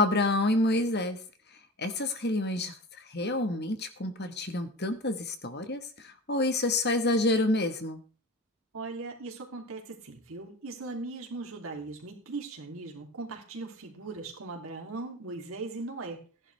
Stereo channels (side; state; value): both; normal; correlation 0.33